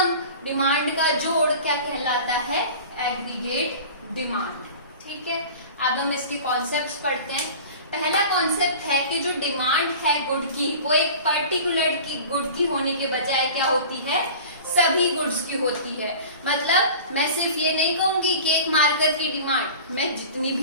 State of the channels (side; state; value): both; inverted; correlation -0.39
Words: डिमांड का जोड़ क्या कहलाता है, एग्रीगेट डिमांड। ठीक है, अब हम इसके कॉन्सेप्ट्स पढ़ते हैं। पहला कॉन्सेप्ट है कि जो डिमांड है गुड की, वो एक पर्टिकुलर की गुड की होने के बजाय क्या होती है, सभी गुड्स की होती है। मतलब मैं सिर्फ ये नहीं कहूंगी कि एक मार्कर की डिमांड, मैं जितनी